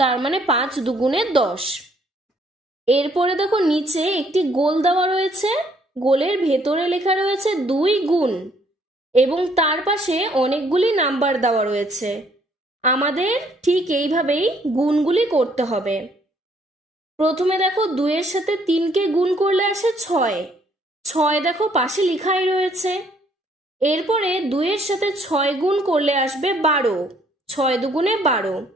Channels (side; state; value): both; normal; correlation 0.65